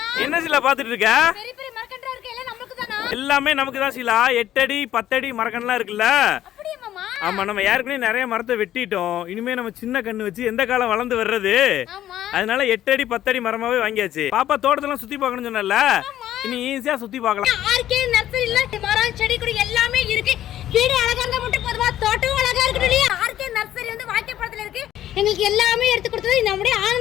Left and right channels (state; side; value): quieter; right; 12.3 dB